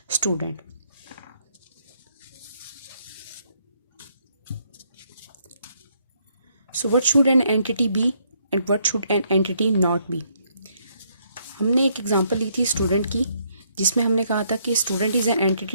student. So what should an entity be and what should an entity not be? हमने एक एग्जांपल ली थी स्टूडेंट की, जिसमें हमने कहा था कि student is an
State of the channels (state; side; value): inverted; both; correlation -0.72